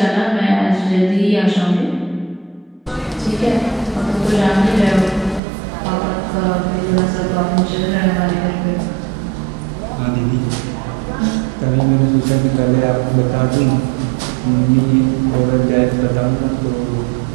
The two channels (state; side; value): drops out; left; at 5.4 s